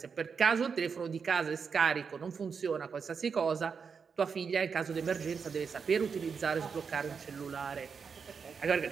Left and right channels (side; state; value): left; quieter; 5.9 dB